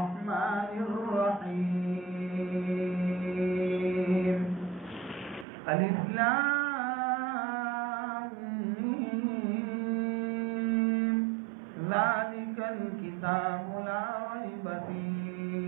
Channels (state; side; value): drops out; left; at 5.5 s